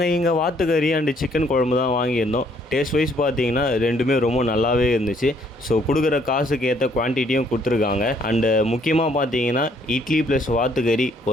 இங்கே வாத்துக்கறி அண்டு சிக்கன் குழம்பு தான் வாங்கியிருந்தோம். டேஸ்ட் வைஸ் பார்த்தீங்கன்னா ரெண்டுமே ரொம்ப நல்லாவே இருந்துச்சு. ஸோ கொடுக்குற காசுக்கு ஏற்ற குவான்டிட்டியும் கொடுத்துருக்காங்க. அண்டு முக்கியமாக பார்த்தீங்கன்னா இட்லி ப்ளஸ் வாத்துக்கறி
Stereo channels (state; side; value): normal; both; correlation 0.66